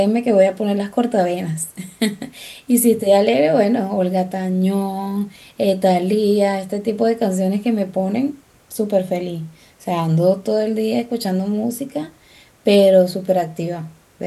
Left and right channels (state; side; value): identical; both; correlation 1.00